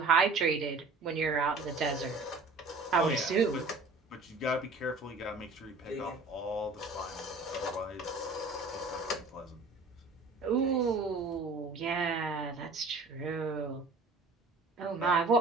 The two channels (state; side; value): quieter; left; 3.6 dB